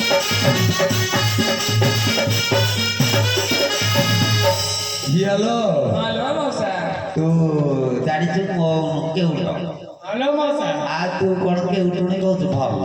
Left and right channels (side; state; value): both; identical; correlation 1.00